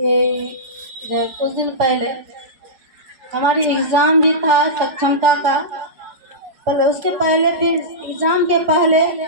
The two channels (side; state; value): left; late; 5.1 ms